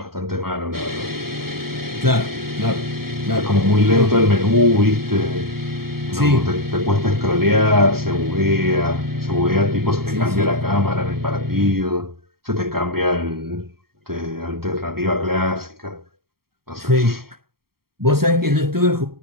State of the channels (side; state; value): left; late; 0.94 ms